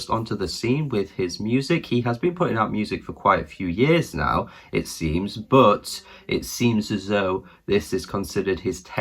onto the scene with his music. He has been putting out music for quite a few years now, it seems, but it seems as though this is considered his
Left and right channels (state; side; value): identical; both; correlation 1.00